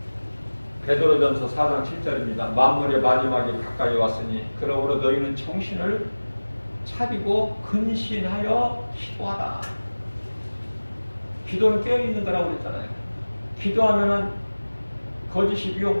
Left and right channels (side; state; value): both; inverted; correlation -1.00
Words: 베드로전서 4장 7절입니다. 만물의 마지막이 가까이 왔으니 그러므로 너희는 정신을 차리고 근신하여 기도하라. 기도는 깨어있는 거라고 그랬잖아요. 기도하면은 거짓이 미혹